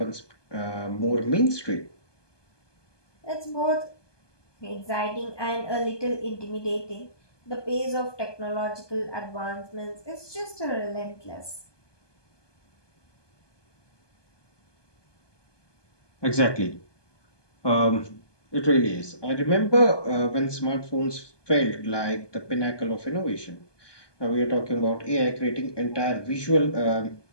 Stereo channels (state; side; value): late; right; 1.2 ms